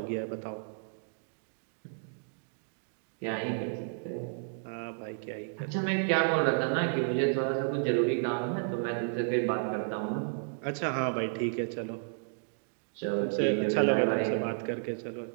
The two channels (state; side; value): silent; left; digital silence